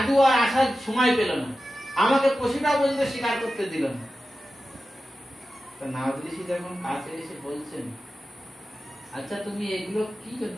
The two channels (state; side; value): normal; both; correlation 0.93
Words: আর আসার সময় পেল না, আমাকে পশুটা পর্যন্ত স্বীকার করতে দিল না। তো নারদ ঋষি যখন কাছে এসে বলছেন, আচ্ছা তুমি এগুলো কি জন্য